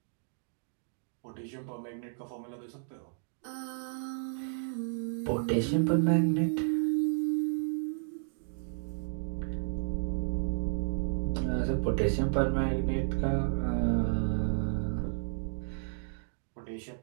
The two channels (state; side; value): silent; left; digital silence